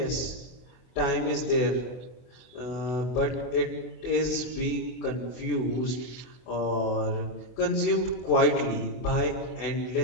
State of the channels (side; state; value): right; late; 24 ms